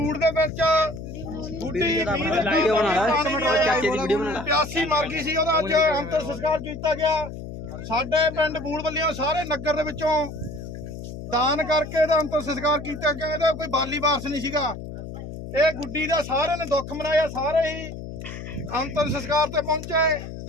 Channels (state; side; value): noise; left; hum, 10 dB below the sound